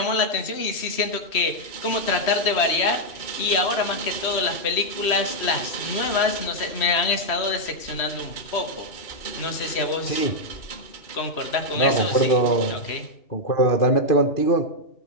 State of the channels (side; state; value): right; late; 3.1 ms